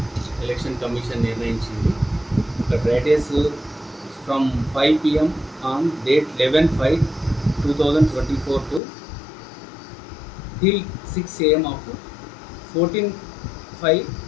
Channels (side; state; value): right; drops out; at 8.8 s